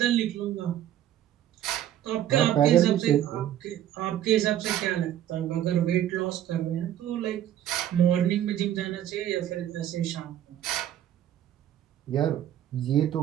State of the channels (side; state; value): left; quieter; 11.5 dB